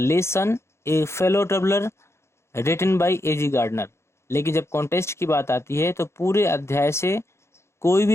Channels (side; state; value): right; late; 0.13 ms